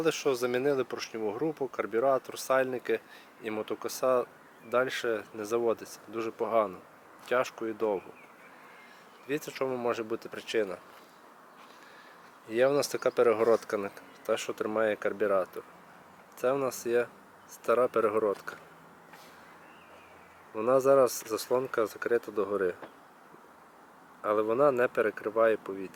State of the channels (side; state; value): both; identical; correlation 1.00